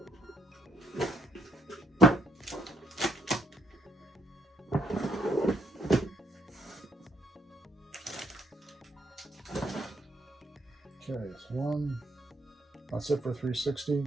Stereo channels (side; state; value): both; normal; correlation 0.71